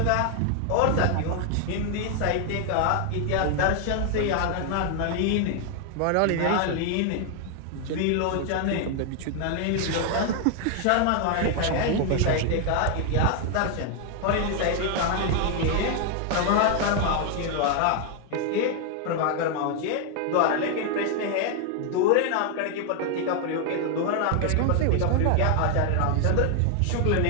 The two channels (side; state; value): both; different; correlation 0.00